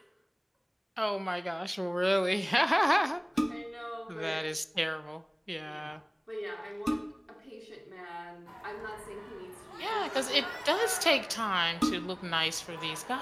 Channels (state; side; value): identical; both; correlation 1.00